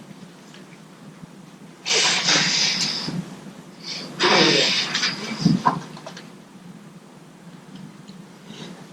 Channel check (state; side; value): identical; both; correlation 1.00